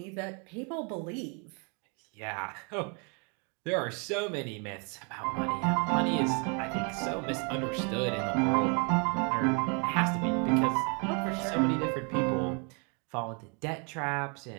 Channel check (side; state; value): left; quieter; 35.1 dB